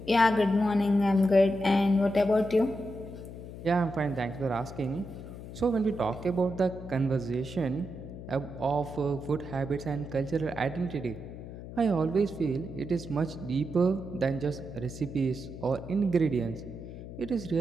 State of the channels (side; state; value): left; noise; hum, 12 dB below the sound